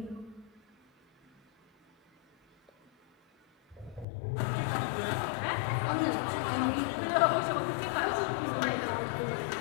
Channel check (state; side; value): drops out; right; at 4.0 s